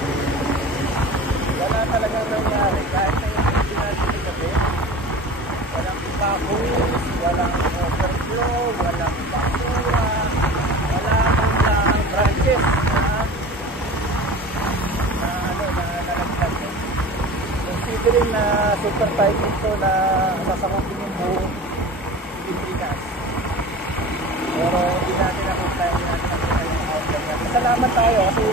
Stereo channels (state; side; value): normal; both; correlation 0.36